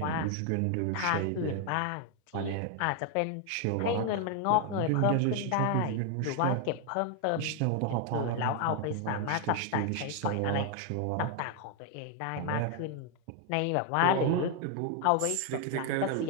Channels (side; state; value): both; different; correlation 0.00